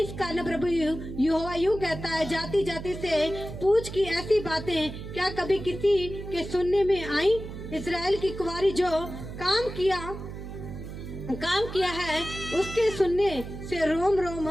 कारण प्रभु यहोवा यूं कहता है, जाति जाति से पूछ की ऐसी बातें क्या कभी किसी के सुनने में आई? इस्राएल की कुंवारी जो काम किया है उसके सुनने से रोम रोम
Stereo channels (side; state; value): right; noise; hum, 10 dB below the sound